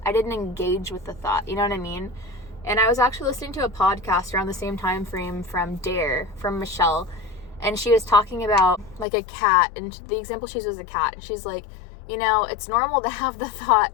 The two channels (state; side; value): drops out; right; at 9.1 s